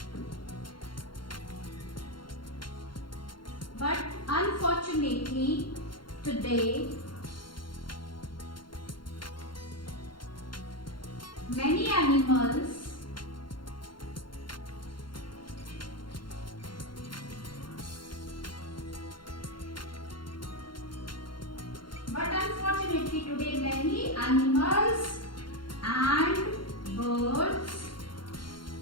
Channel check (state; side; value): late; right; 0.72 ms